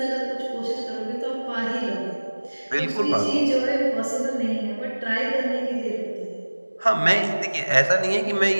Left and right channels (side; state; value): both; inverted; correlation -1.00